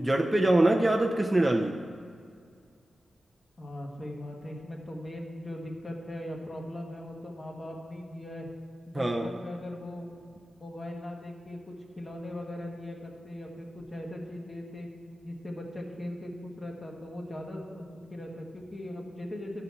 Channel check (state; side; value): normal; both; correlation 0.95